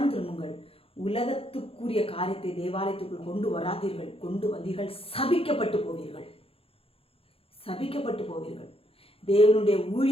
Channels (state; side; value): late; right; 0.27 ms